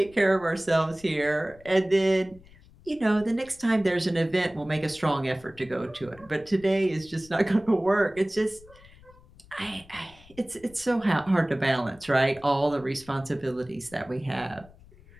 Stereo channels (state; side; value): noise; left; rumble, 24 dB below the sound